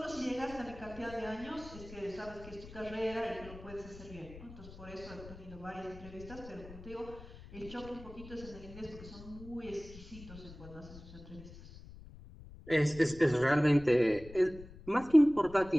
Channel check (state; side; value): noise; left; rumble, 16 dB below the sound